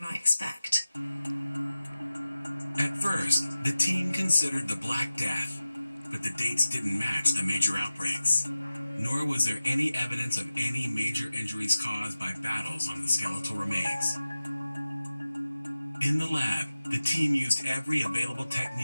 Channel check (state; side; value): inverted; both; correlation -0.95